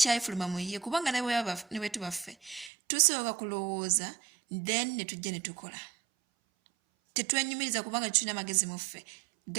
mu ye, kubanga ne bwe tuba ffe tusooka kulowooza then ne tujja ne tukola. Tetwenyumiriza kubanga tulina amagezi mu ffe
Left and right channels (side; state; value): left; drops out; at 2.7 s